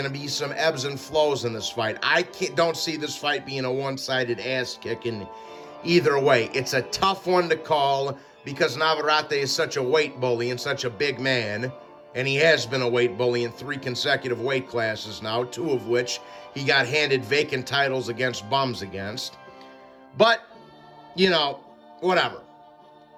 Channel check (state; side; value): identical; both; correlation 1.00